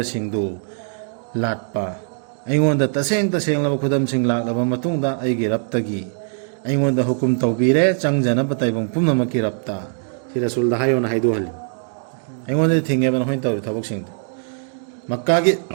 सिंगदु लाटपा अइंगोंदा तसेंग तसेंगलबा खुदम सिंग लाक्लबा मतुंगदा अइगी रप्तगी अइंगोंदा हुकुम तौबीरे चंगजनबा तैबंग पुमनमकी रप्ता सि रसूलदा हायोना हाइदु हलि अइंगोंदा थिंगेबा नखोइन तौरि थबक सिंगदु मक्का की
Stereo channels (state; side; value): silent; left; 65 dB below the other